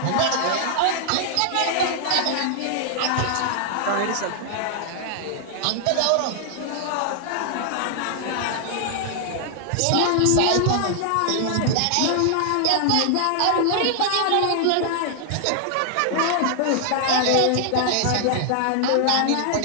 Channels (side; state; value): both; different; correlation -0.01